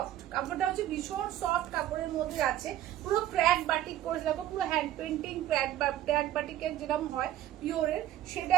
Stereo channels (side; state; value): left; quieter; 12.8 dB